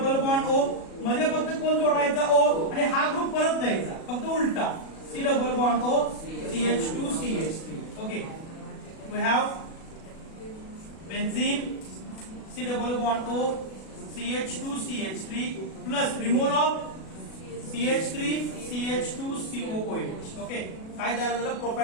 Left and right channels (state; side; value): late; right; 37 ms